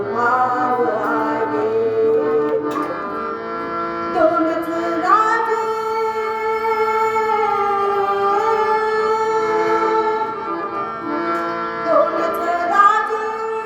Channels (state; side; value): identical; both; correlation 1.00